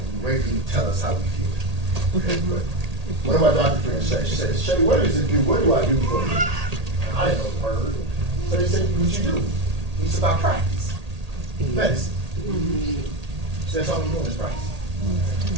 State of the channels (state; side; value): late; left; 1.8 ms